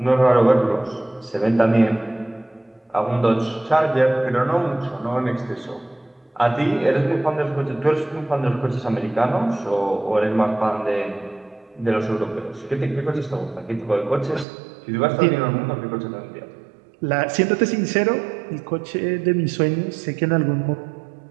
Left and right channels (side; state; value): left; drops out; at 14.5 s